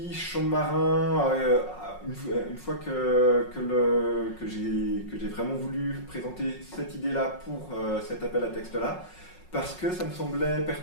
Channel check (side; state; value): right; late; 5.5 ms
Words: chant de marin. Une fois que j'ai vraiment voulu présenter cette idée-là pour cet appel à texte-là, parce que ça me semblait